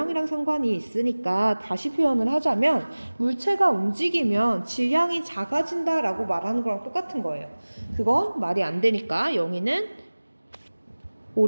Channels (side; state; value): both; inverted; correlation -1.00